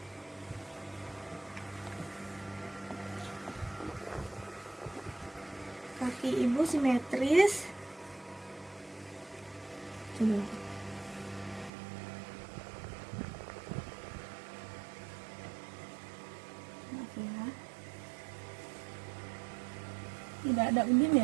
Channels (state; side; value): drops out; left; at 11.7 s